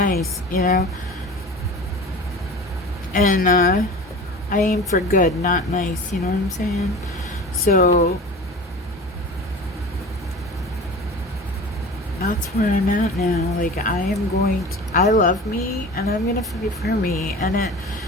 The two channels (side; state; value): both; normal; correlation 0.36